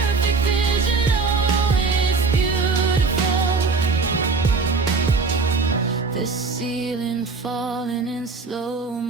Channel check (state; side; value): quieter; left; 4.3 dB